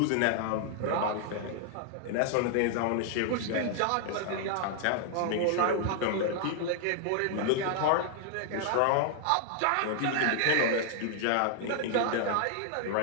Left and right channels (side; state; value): both; different; correlation 0.00